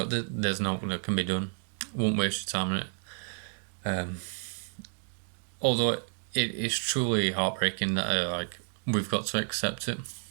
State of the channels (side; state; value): left; silent; 57 dB below the other